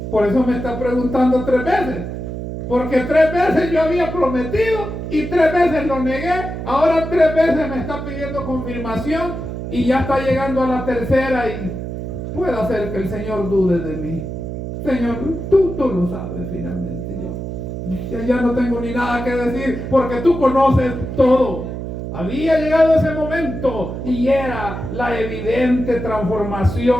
Por eso me está preguntando 3 veces. Porque 3 veces yo había prometido y 3 veces lo negué. Ahora 3 veces me está pidiendo confirmación y ya está llegando a la tercera y puede hacer que el Señor dude de mí. Señor, tú lo sabes finalmente. Yo ya no tengo ni nada que decir porque tú conoces todo. Había llegado ese momento y era la evidente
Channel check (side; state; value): right; noise; hum, 6 dB below the sound